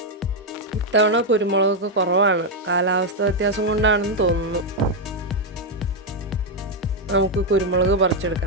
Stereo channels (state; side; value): normal; both; correlation 0.02